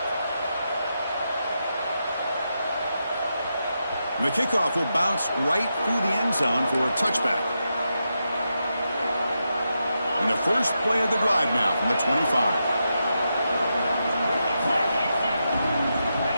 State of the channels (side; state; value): both; inverted; correlation -0.86